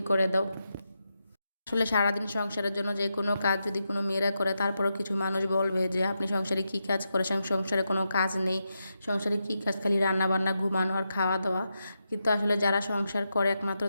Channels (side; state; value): both; inverted; correlation -0.86